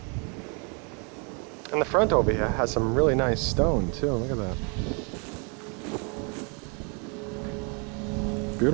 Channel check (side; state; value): left; quieter; 35.6 dB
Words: And the front over here has some really nice stone too. Look at that.